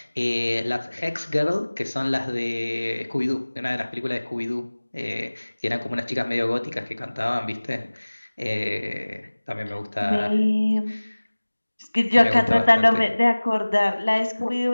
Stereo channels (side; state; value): both; inverted; correlation -1.00